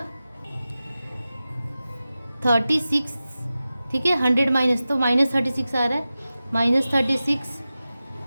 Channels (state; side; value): inverted; both; correlation -0.94